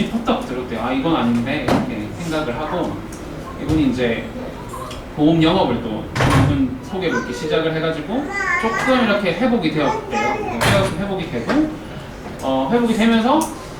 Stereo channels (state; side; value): identical; both; correlation 1.00